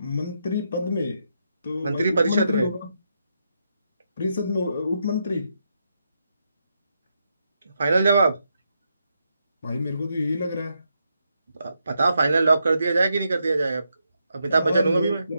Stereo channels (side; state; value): both; inverted; correlation -0.82